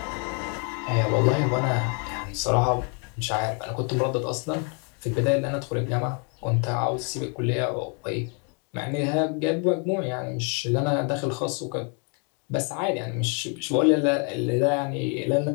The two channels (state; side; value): quieter; right; 37.4 dB